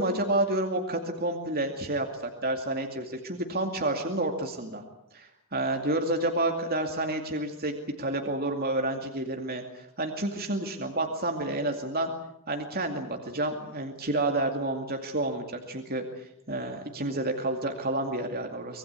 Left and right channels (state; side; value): normal; both; correlation -0.12